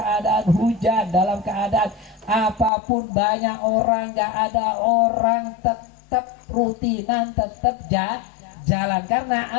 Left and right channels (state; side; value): drops out; right; at 2.7 s